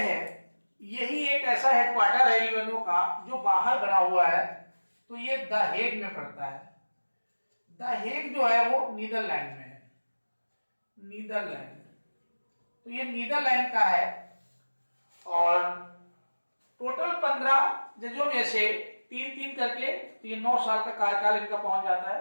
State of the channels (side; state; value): both; inverted; correlation -1.00